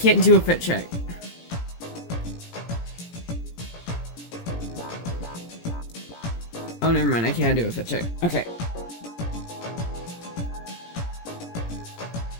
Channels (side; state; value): right; late; 17 ms